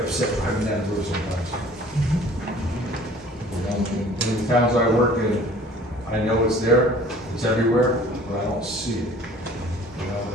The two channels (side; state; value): both; normal; correlation 0.50